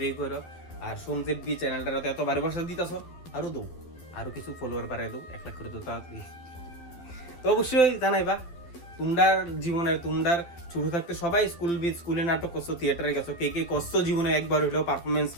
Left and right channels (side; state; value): right; late; 12 ms